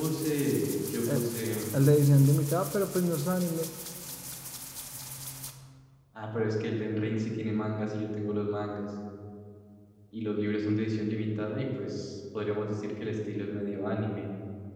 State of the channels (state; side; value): identical; both; correlation 1.00